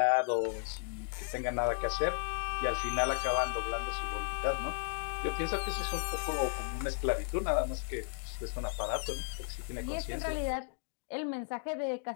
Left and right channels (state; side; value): silent; right; digital silence